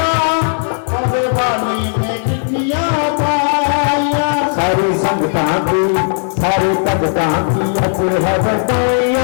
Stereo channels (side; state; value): right; silent; digital silence